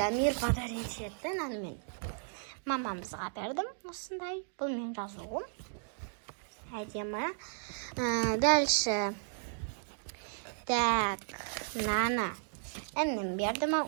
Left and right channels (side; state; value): left; silent; digital silence